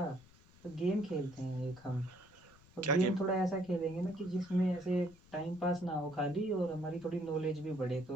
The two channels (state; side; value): noise; left; rumble, 25 dB below the sound